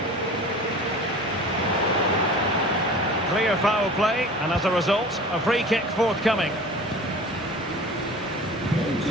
Clear foul play, and as a result, a free kick forthcoming.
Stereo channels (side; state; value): both; normal; correlation 0.40